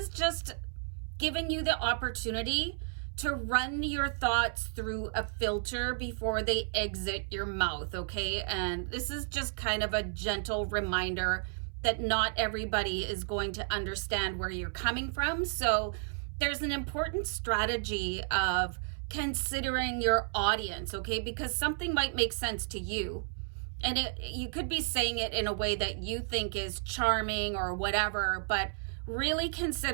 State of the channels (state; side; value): silent; left; 56 dB below the other